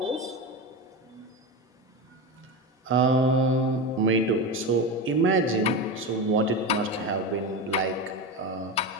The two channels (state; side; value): normal; both; correlation 0.21